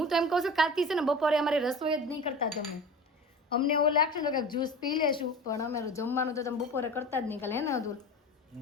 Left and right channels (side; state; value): both; normal; correlation 0.34